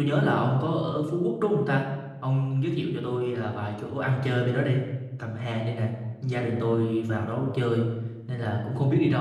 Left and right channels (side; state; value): both; identical; correlation 1.00